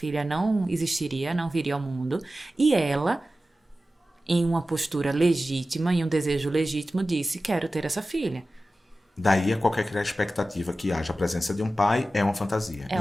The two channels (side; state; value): both; normal; correlation 0.95